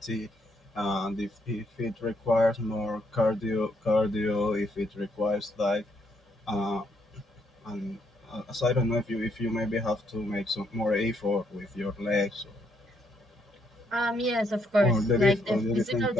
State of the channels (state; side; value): normal; both; correlation 0.74